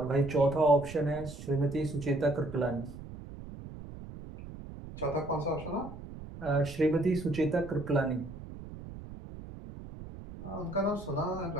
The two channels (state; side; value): noise; right; rumble, 13 dB below the sound